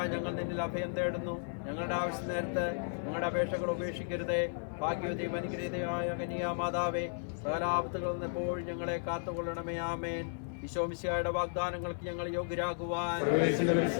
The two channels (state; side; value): silent; right; 55 dB below the other